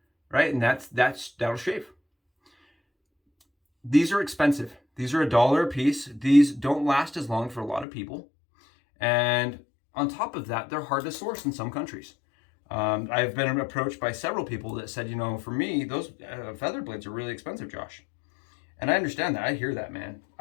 Right, and that'll shave. These are expensive. These are $1 a piece. These don't last as long for a lot of people. And on top of that, they're hard to source in some countries. I've been approached by several people that said, for me, those feather blades are really expensive, Josh. And I understand that. I hear that, man.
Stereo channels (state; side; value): drops out; right; at 7.9 s